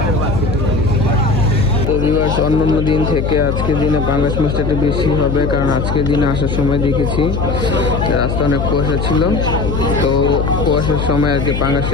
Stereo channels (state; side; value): noise; left; hum, 2 dB below the sound